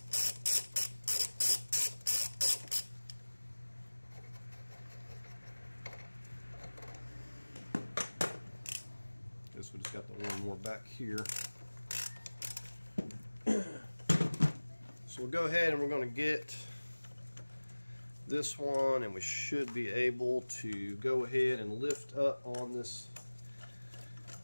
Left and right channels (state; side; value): inverted; both; correlation -1.00